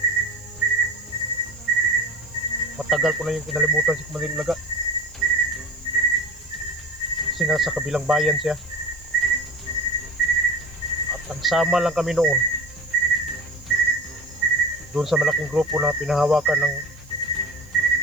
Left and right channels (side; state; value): right; noise; hiss, 27 dB below the sound